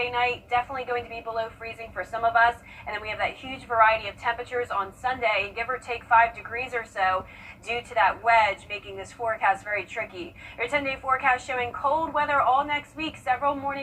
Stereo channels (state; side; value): identical; both; correlation 1.00